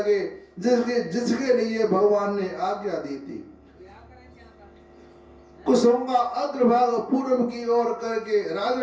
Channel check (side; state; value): both; identical; correlation 1.00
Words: जिसके लिए भगवान ने आज्ञा दी थी। कुसुम का अग्रभाग पूर्व की ओर करके